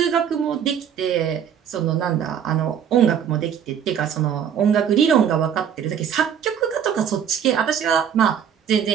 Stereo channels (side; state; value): left; quieter; 8.5 dB